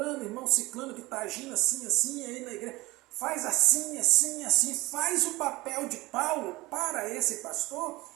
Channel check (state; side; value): quieter; left; 20.8 dB